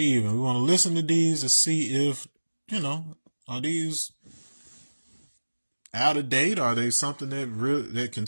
And we want to listen to these to see if, are these out of date? Are they something that can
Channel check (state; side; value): inverted; both; correlation -1.00